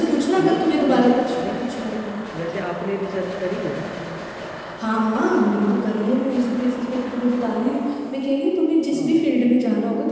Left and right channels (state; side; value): identical; both; correlation 1.00